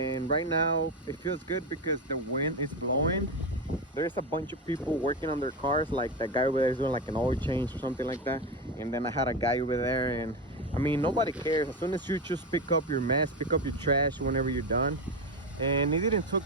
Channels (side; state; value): both; normal; correlation 0.16